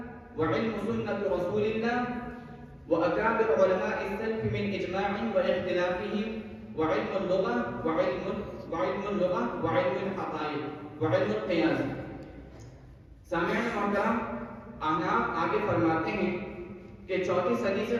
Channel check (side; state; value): both; identical; correlation 1.00